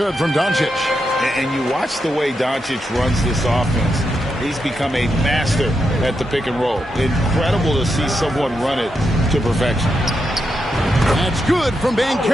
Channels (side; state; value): both; normal; correlation 0.84